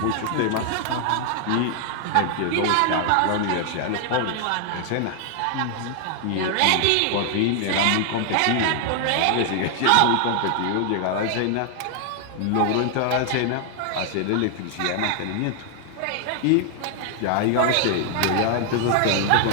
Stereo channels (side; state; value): both; different; correlation 0.00